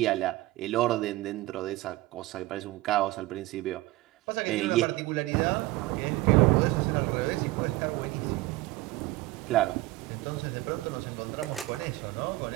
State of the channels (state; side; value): quieter; left; 18.9 dB